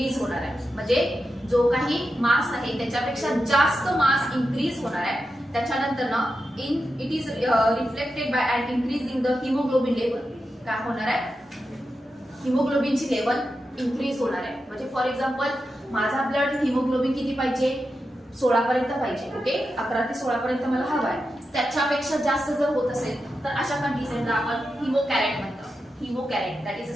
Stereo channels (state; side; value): normal; both; correlation 0.89